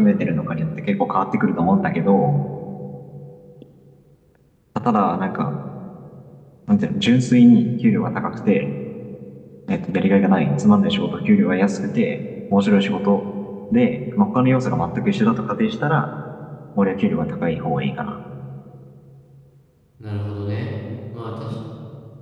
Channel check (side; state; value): both; identical; correlation 1.00